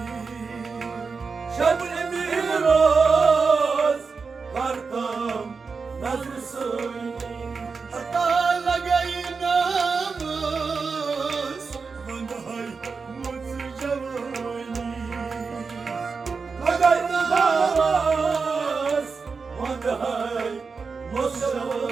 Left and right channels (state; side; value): quieter; left; 4.9 dB